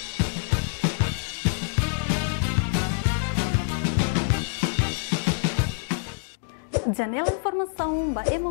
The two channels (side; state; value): right; silent; digital silence